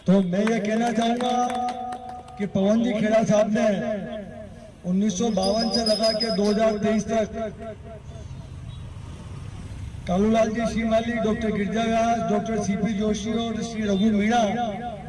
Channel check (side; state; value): both; identical; correlation 1.00